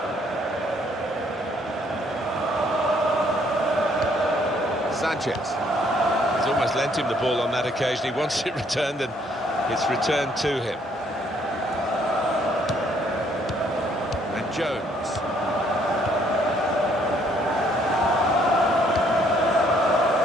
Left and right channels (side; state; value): both; normal; correlation 0.66